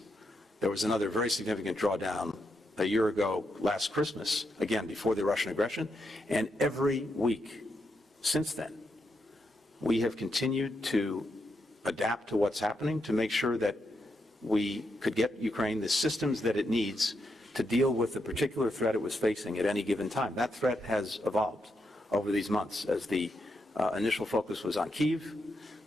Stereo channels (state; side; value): normal; both; correlation 0.82